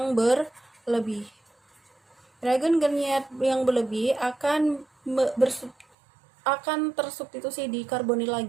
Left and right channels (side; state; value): left; drops out; at 5.9 s